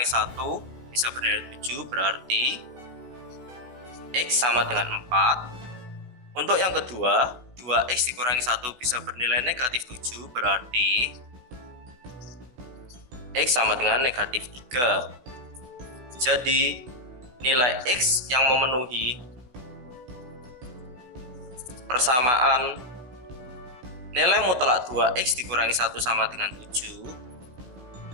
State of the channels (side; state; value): left; late; 16 ms